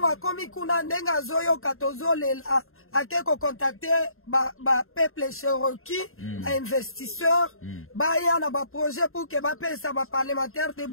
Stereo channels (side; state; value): right; late; 0.61 ms